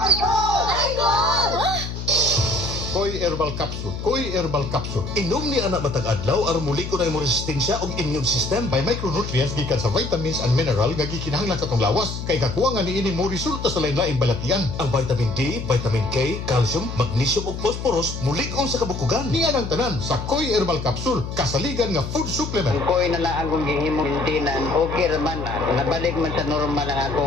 God! Koy Herbal Capsule. Koy Herbal Capsule. Inom ni anak matag adlaw aron muliko na imong resistensya ug immune system by micronutrients gikan sa vitamins and mineral nga gikinahanglan sa tong lawas. Kay kakuha nga niini mo resulta sa lain-laing balatian. Ang vitamin D, vitamin K, calcium, magnesium ug phosphorus mulig-on sa kabukugan. Niya ang tanan sa Koy Herbal Capsule, kasaligan nga food supplement. Koy na lang akong gihimo maintenance, okay raman na. Nabalik man sa normal ang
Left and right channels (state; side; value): noise; left; hum, 7 dB below the sound